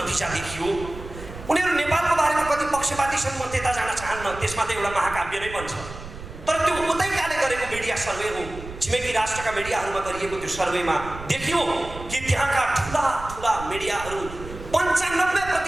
देखियो। उनीहरू नेपालको बारेमा कति पक्षपाती छन् म त्यता जान चाहन्न, त्यसमा त एउटा महाकाव्य नै बन्छ। तर त्यो उतैकाले गरेको मिडिया सर्वे हो। छिमेकी राष्ट्रका मिडियाहरूमा गरिएको त्यो सर्वेमा देखियो कि त्यहाँका ठुला ठुला मिडियाहरू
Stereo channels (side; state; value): right; noise; rumble, 13 dB below the sound